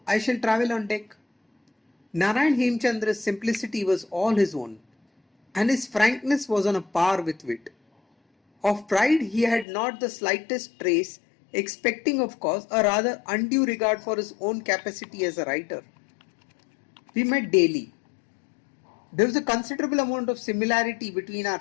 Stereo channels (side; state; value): right; drops out; at 9.7 s